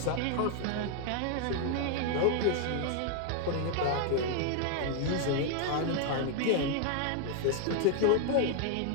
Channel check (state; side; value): different; both; correlation 0.00